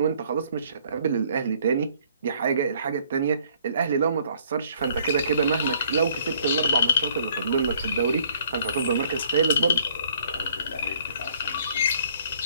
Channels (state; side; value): inverted; both; correlation -0.59